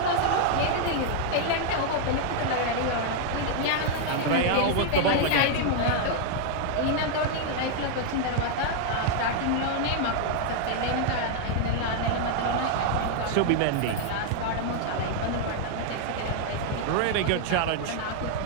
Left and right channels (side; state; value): both; different; correlation 0.00